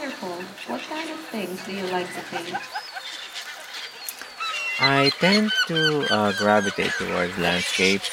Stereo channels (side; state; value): both; identical; correlation 1.00